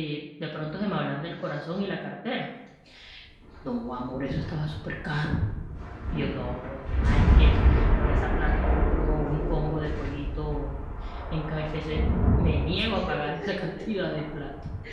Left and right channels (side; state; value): both; identical; correlation 1.00